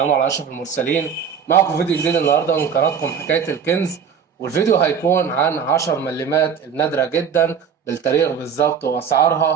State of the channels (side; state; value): left; quieter; 7.3 dB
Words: على أشرف المرسلين. معكم فيديو جديد النهاردة من قناتكم حكاية الكنز، والفيديو هيكون عن 10 ملمات النادرة جدا بالتاريخ بالظبط